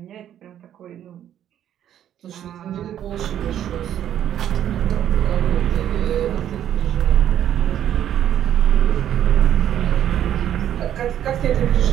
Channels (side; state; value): left; quieter; 10.6 dB